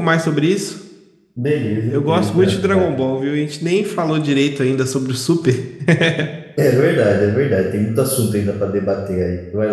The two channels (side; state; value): both; identical; correlation 1.00